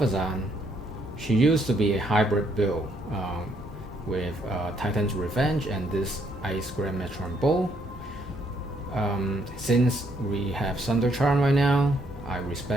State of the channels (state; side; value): normal; both; correlation 0.71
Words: she used to be a hybrid build with Titan's Revenge and this Ice Grand Metron Bow. Since we have Thunder Charm right now, I